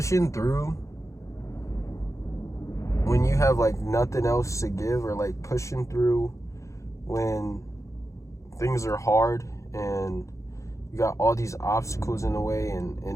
through when you have like nothing else to give, or like pushing through when things are hard and you got all these obstacles in the way,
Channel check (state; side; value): late; right; 0.15 ms